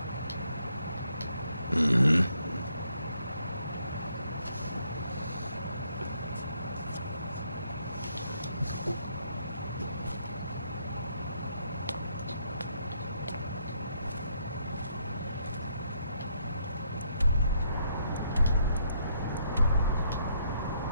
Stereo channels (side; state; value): both; inverted; correlation -0.72